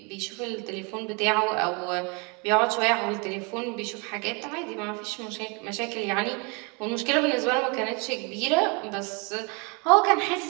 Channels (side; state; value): left; quieter; 31.8 dB